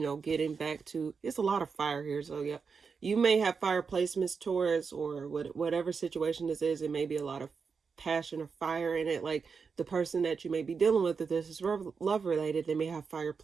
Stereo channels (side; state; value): left; quieter; 5.5 dB